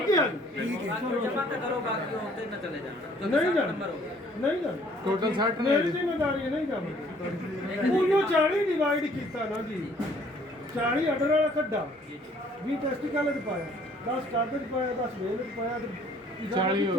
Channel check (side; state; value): both; normal; correlation 0.59